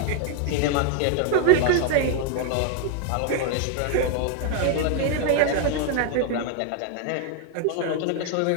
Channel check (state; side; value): different; both; correlation 0.00